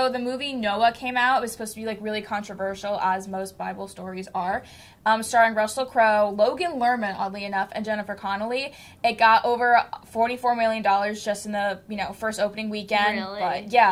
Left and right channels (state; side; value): identical; both; correlation 1.00